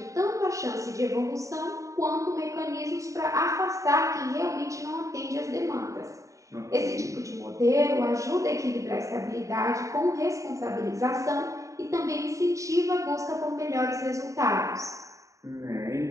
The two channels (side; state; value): left; late; 0.16 ms